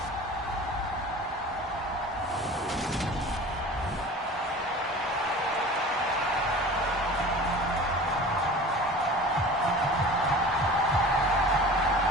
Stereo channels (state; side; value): normal; both; correlation 0.39